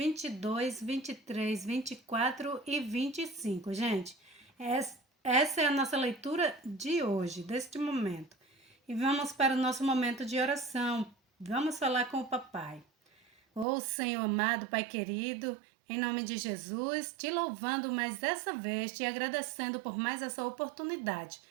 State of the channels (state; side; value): drops out; left; at 13.7 s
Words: 23, 24 e 25, gente. Essa é a nossa leitura de hoje, deste momento. E vamos para o nosso momento de oração. Vamos falar com o papai. Ô Senhor amado, Pai querido, em nome de Jesus, te louvando mais dessa vez, te agradecendo por mais essa oportunidade.